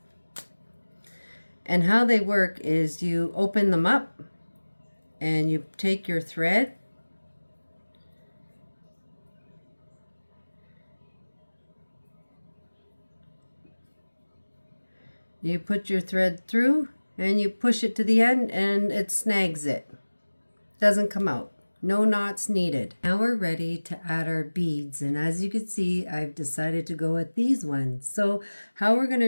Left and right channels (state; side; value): inverted; both; correlation -1.00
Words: And how they work is you open them up and you take your thread you put your thread through and you push it to the end and it snags it. Doesn't come out. No knots needed. Now we're ready to add our beads, and as you can see, I've decided to go with these ones. So how we're going